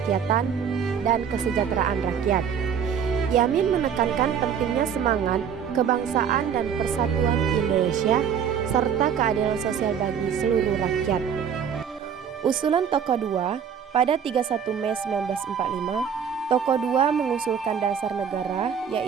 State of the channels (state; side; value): quieter; left; 7.7 dB